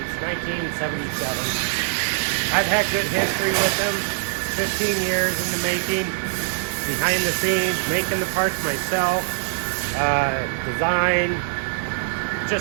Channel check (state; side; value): silent; left; digital silence